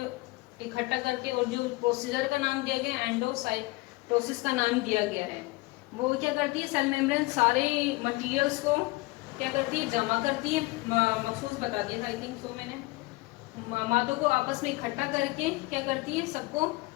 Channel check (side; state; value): right; quieter; 22.2 dB